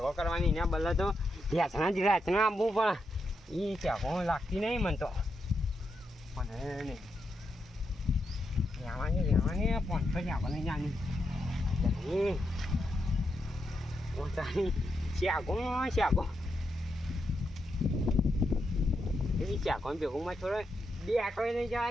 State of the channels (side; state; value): both; normal; correlation 0.84